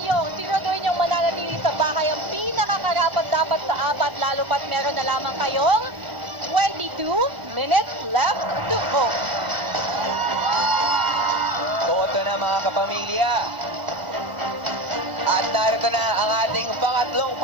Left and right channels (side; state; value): left; late; 1.0 ms